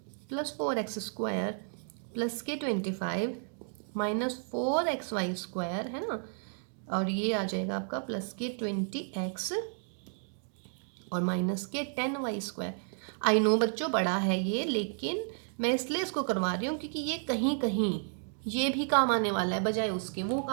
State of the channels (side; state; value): left; silent; 56 dB below the other